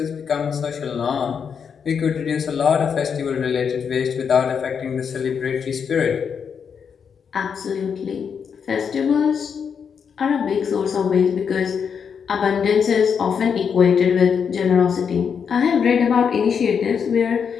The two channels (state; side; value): quieter; right; 6.8 dB